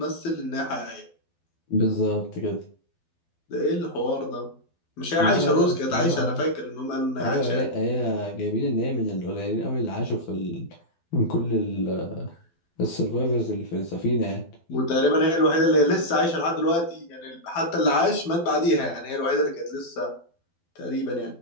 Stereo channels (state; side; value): late; right; 12 ms